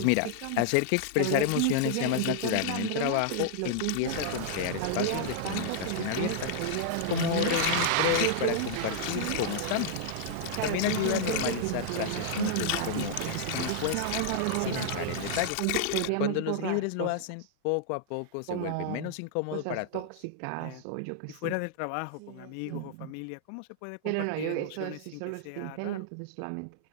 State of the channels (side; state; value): both; different; correlation -0.01